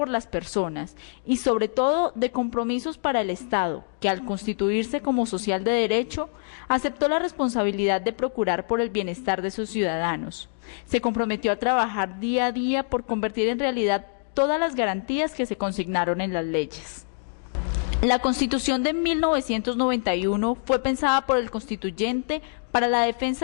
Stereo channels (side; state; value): right; silent; digital silence